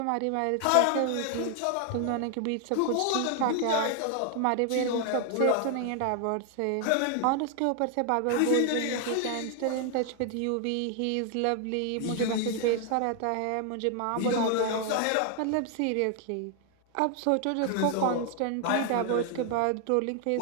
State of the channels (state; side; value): different; both; correlation 0.00